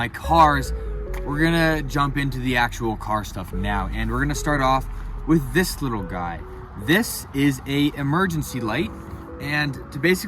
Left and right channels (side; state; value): both; identical; correlation 1.00